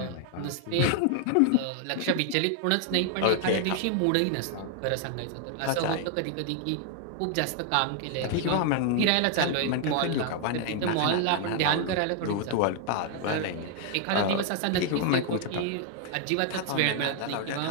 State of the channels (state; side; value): different; both; correlation 0.00